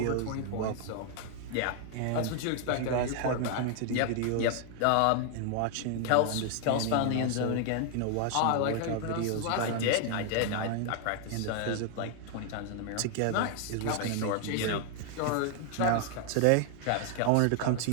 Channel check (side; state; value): both; different; correlation 0.00